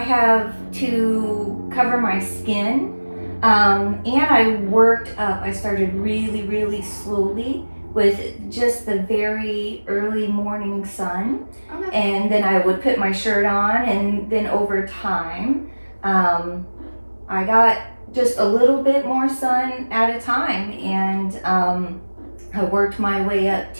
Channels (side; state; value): both; inverted; correlation -1.00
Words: have to cover my skin. And I worked up. I started really, really slowly with just the very early morning sun. Okay. And then I would put my shirt on, and then over time, I got just a little bit more sun at a time, and I worked my way up